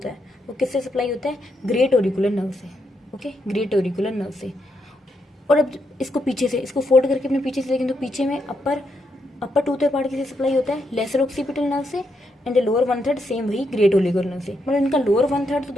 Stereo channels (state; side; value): normal; both; correlation 0.80